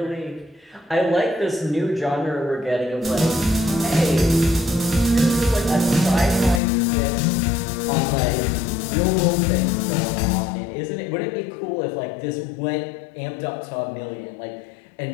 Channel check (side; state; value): right; drops out; at 6.6 s